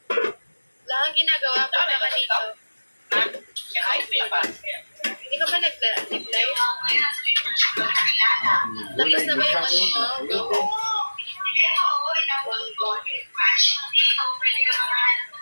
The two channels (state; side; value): inverted; both; correlation -1.00